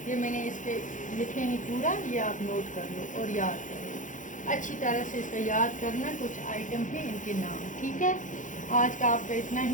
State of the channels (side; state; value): right; late; 0.37 ms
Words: ये मैंने इसके लिखे हैं पूरा, ये आप नोट कर लो और याद कर लो अच्छी तरह से। इसका याद करना, कुछ आइटम हैं, इनके नाम, ठीक है। आज का आपका इतना